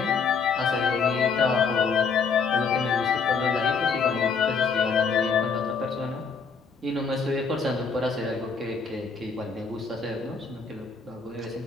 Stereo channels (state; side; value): quieter; right; 5.3 dB